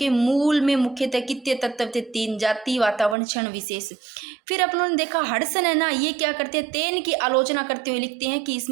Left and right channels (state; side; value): drops out; left; at 3.2 s